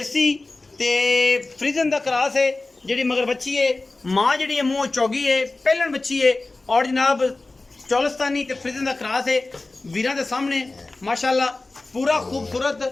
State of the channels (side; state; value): right; quieter; 3.2 dB